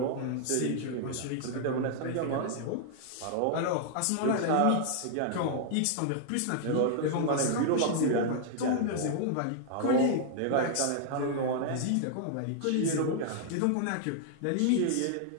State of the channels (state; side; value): different; both; correlation 0.00